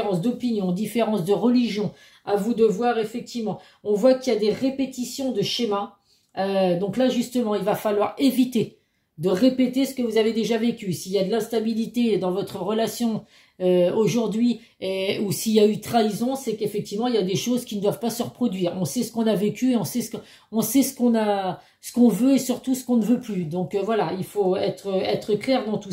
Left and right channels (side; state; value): both; identical; correlation 1.00